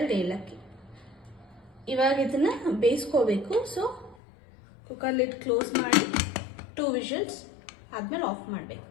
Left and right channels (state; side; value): drops out; right; at 4.2 s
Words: ಏಲಕ್ಕಿ. ಇವಾಗ ಇದನ್ನ ಬೇಯಿಸ್ಕೋಬೇಕು. ಸೊ ಕುಕ್ಕರ್ ಲಿಡ್ ಕ್ಲೋಸ್ ಮಾಡಿ 2 ವಿಷಲ್ಸ್ ಆದ್ಮೇಲೆ ಆಫ್ ಮಾಡಬೇಕು.